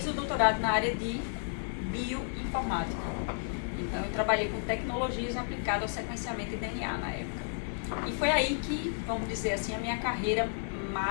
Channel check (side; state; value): right; silent; digital silence